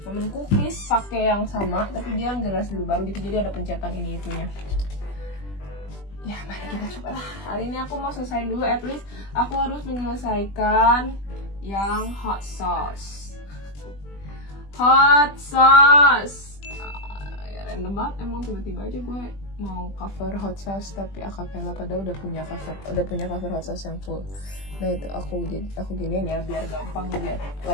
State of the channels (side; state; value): right; late; 20 ms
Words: Temen cookies pakai yang sama tapi dia generasi lebih baru gitu, jadi ada pencetan ini itunya. Ya mari kita coba lah. Hari ini aku mau selesaiin dulu, at least aku harus menyelesaikan yang hot sauce. Ya random banget emang, tiba-tiba aja gue mau cover hot sauce tapi acapella, padahal udah punya cover hot sauce yang full. Nah itu aku giniin ya biar gampang lihat